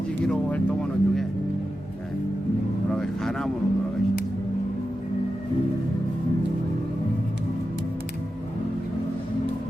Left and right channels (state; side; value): normal; both; correlation 0.91